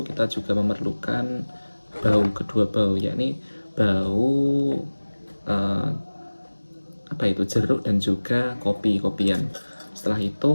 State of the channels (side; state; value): both; inverted; correlation -1.00